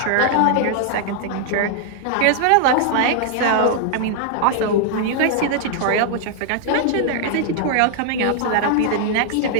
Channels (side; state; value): both; different; correlation -0.01